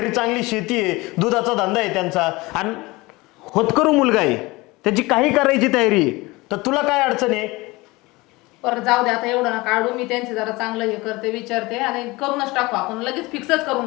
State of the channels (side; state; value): right; quieter; 22.2 dB